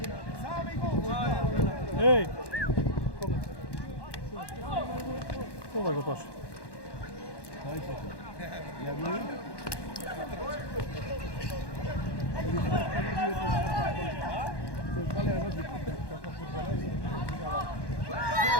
Ej! Ова го паша.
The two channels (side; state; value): right; late; 1.1 ms